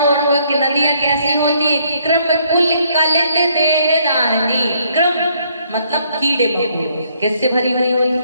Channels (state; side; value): inverted; both; correlation -0.67